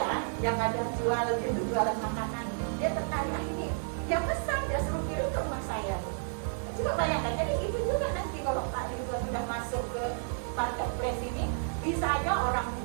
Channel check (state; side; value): silent; left; digital silence